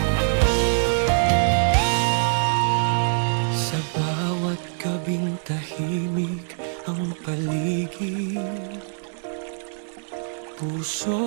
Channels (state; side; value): silent; left; digital silence